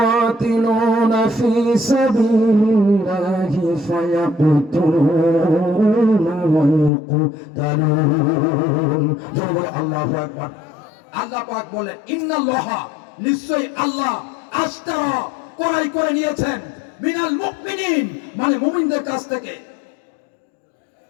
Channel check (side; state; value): right; drops out; at 6.9 s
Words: في سبيل الله فيقتلون ويقتلون। আল্লাহু আকবার। আল্লাহ পাক বলেন, ইন্নাল্লাহা, নিশ্চয়ই আল্লাহ, আশতারা, ক্রয় করে নিয়েছেন, মিনাল মুমিনিন, মানে মুমিনদের কাছ থেকে,